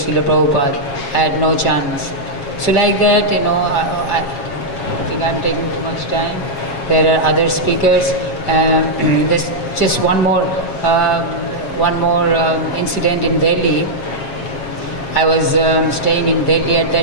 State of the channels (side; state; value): right; late; 7.4 ms